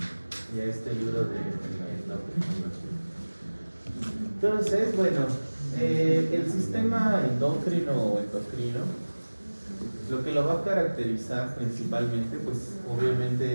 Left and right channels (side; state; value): both; inverted; correlation -1.00